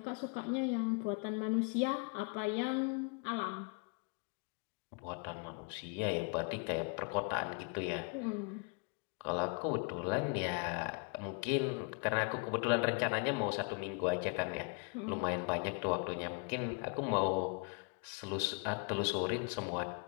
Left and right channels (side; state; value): right; quieter; 34.4 dB